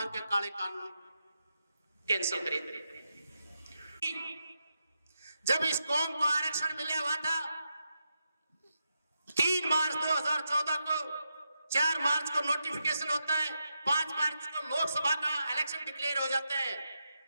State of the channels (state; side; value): inverted; both; correlation -0.85